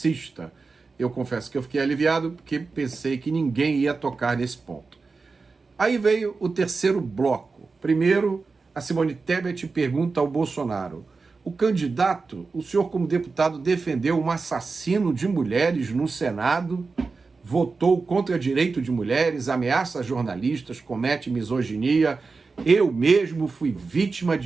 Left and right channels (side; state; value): left; quieter; 4.3 dB